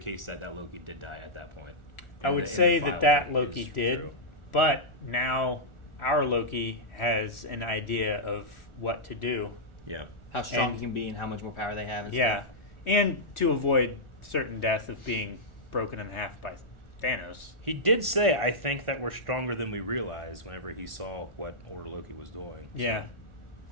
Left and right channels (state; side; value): late; right; 1.4 ms